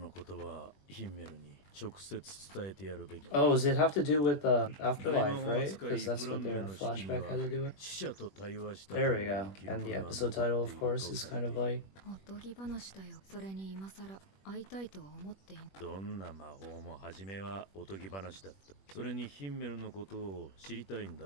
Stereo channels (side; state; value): right; late; 21 ms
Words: 言葉はヒンメルに直接伝えてやるべき。 Oh, does it have to do with 大 afterlife, 魔法 right? 使い Because that's フラ what ンメ their の式に flashback は had to do with. 死者と対話したと There い we う go. 記録 And the が episode 残 title, って of いる course, と is され kind て of いる。 like おとぎ話だよ。それに今さら会いたいとは思っていん。どんな魔法も初めはおとぎ話だった。それにヒンメルのことを知りたいんだ